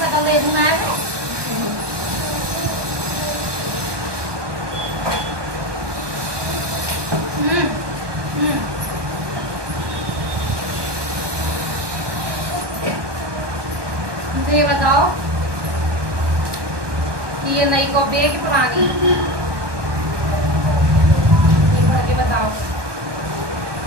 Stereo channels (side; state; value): left; late; 1.2 ms